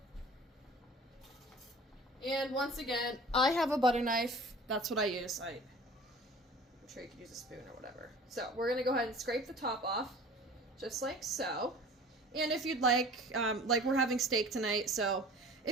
And once again, I have a butter knife. That's what I use. I'm sure you could use a spoon or whatever. So we're going to go ahead and scrape the top off, just like so. And if you'd like we're having steak tonight, so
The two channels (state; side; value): normal; both; correlation 0.44